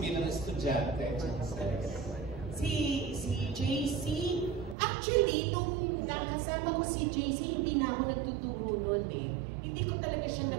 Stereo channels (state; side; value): drops out; left; at 4.8 s